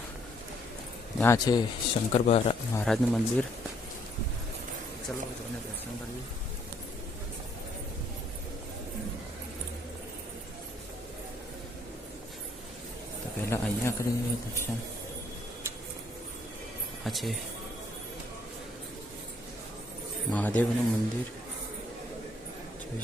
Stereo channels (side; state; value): both; normal; correlation 0.67